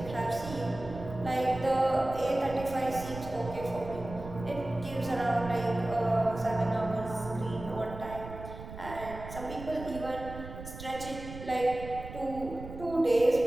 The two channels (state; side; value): noise; right; rumble, 12 dB below the sound